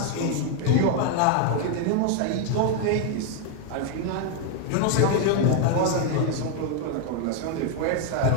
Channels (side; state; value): both; different; correlation 0.01